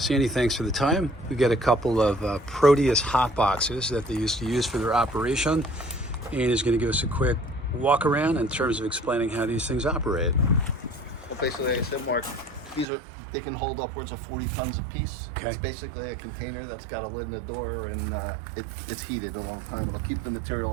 thanks for the time. We got a couple of Proteus Hotboxes that they used to use for their operation, and he's going to give us a quick walk around in terms of explaining how these things operate. Well, basically, like I said, Mark, they can hold upwards of 40 tons a piece. Okay. It's basically a container that's got a lid in the door, and it's heated all the time. It'll keep the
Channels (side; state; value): left; drops out; at 12.9 s